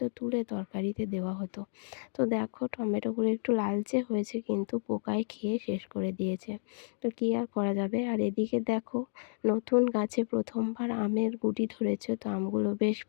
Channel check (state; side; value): silent; right; digital silence